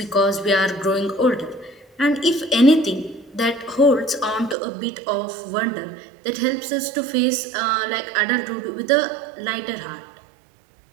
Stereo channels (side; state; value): left; drops out; at 4.5 s